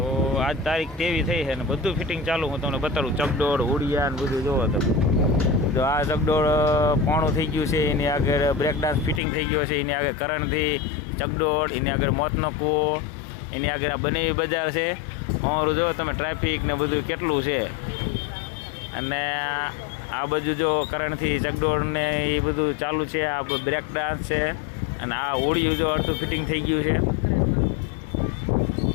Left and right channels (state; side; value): drops out; right; at 9.2 s